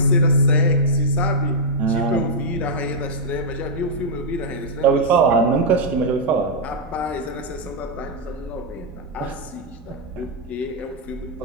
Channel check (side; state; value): both; normal; correlation -0.06